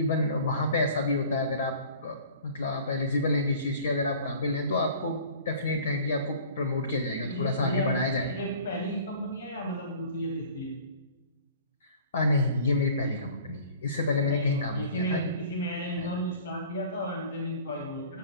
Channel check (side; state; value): both; inverted; correlation -0.47